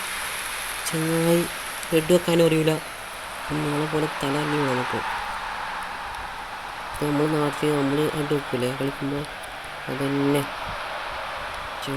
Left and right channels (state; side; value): identical; both; correlation 1.00